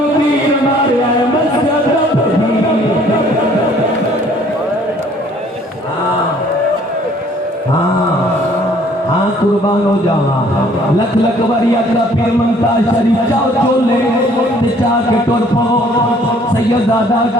तीर मारया है मस्जिद हाँ कुर्बान हो जावा लख लख बारी अकरा पीर मंता शरीफ चाओ चोले ते चा के टुर पवो सैयदादा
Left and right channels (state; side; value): normal; both; correlation 0.58